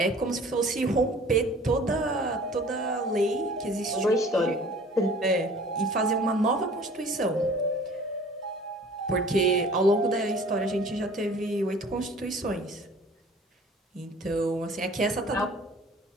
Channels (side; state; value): both; normal; correlation 0.48